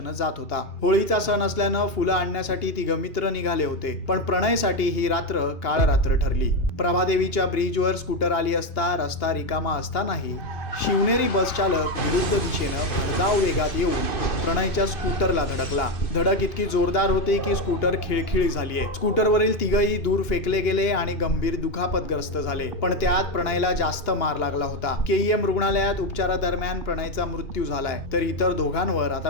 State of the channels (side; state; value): right; late; 2.8 ms